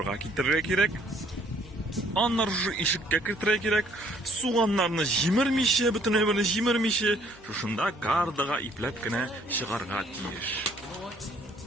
ketirga kerak. Anlar shu eshikka kirtirga kerak. Suvanlarni jimirmishi, butun o'rni jimirmishi, shunda kardaga iplabgina chiqarga tegish.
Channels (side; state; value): both; normal; correlation 0.62